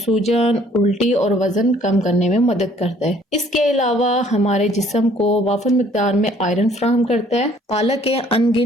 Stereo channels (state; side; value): normal; both; correlation 0.59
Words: उल्टी और वजन कम करने में मदद करता है। इसके अलावा हमारे जिस्म को वाफर मिकदार में आयरन फराहम करता है। पालक के